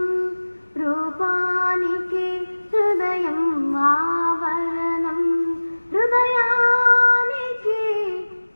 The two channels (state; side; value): inverted; both; correlation -1.00